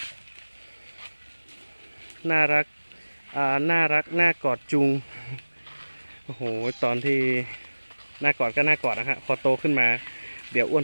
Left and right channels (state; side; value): inverted; both; correlation -1.00